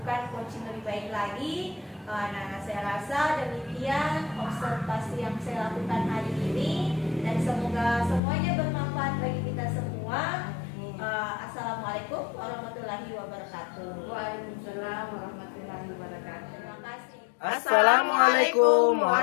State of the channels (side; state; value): right; drops out; at 8.2 s